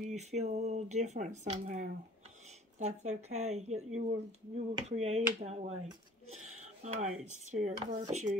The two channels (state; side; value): normal; both; correlation 0.49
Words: you feel a little different somehow. That's okay. You were created that way. Alright, Spirit